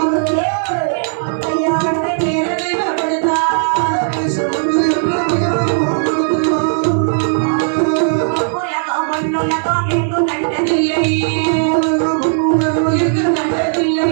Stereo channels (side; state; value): left; silent; digital silence